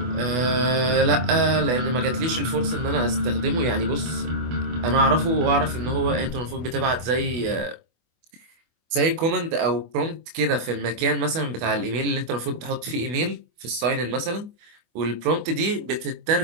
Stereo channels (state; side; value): late; left; 24 ms